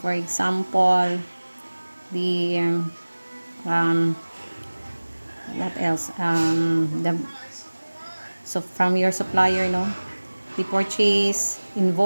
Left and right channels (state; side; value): inverted; both; correlation -1.00